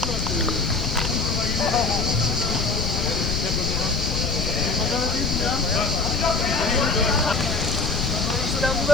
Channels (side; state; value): left; noise; rumble, 2 dB below the sound